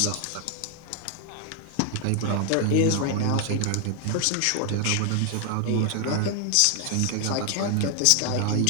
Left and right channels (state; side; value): different; both; correlation 0.00